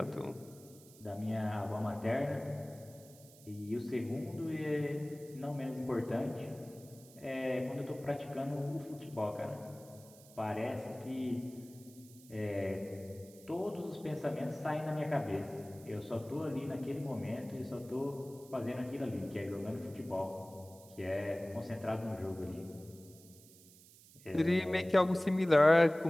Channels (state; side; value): noise; right; hiss, 22 dB below the sound